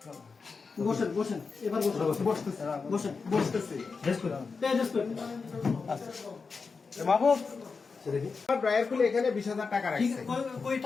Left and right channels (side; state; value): right; quieter; 4.8 dB